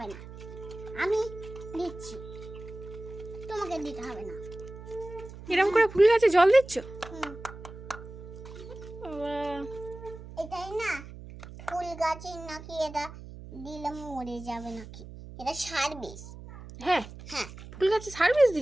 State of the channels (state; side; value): noise; right; hum, 14 dB below the sound